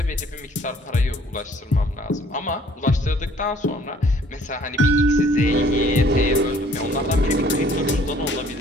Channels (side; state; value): both; normal; correlation 0.58